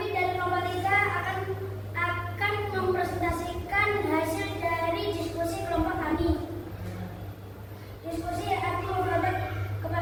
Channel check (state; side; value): identical; both; correlation 1.00